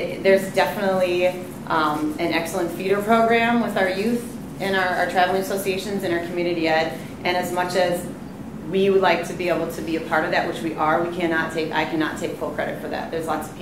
definitely an excellent feeder program with our youth and our traveling associations and our community ed. And as much as we would like to be able to be a part of that, which we are, I cannot take full credit for that. There's lots of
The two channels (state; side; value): identical; both; correlation 1.00